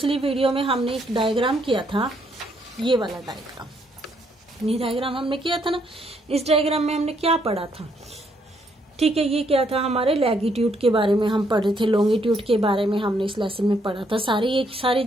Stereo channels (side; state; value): both; normal; correlation 0.72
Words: वीडियो में हमने एक डायग्राम किया था, ये वाला डायग्राम। ये डायग्राम हमने किया था ना। इस डायग्राम में हमने क्या पढ़ा था? ठीक है, ये क्या था? हमारे लैगिट्यूड के बारे में हम पढ़ रहे थे, लॉन्गिट्यूड के बारे में हमने इस लेसन में पढ़ा था। सारी